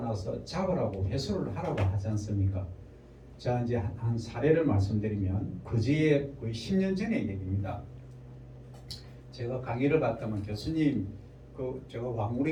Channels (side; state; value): both; identical; correlation 1.00